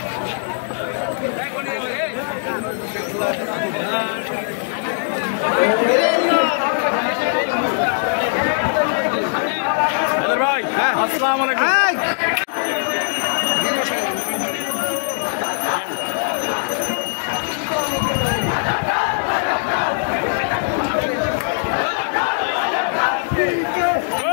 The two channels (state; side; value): silent; right; digital silence